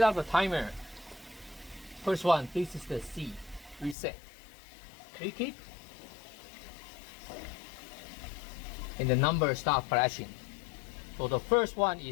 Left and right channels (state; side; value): drops out; right; at 4.0 s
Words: up the timer, first one, this is the C, reset. Click it, and the numbers start flashing. So the first one